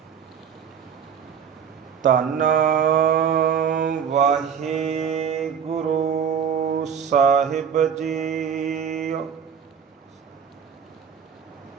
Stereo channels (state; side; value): quieter; left; 7.6 dB